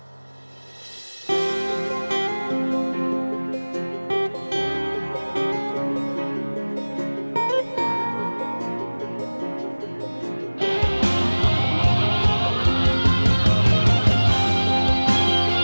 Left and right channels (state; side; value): inverted; both; correlation -1.00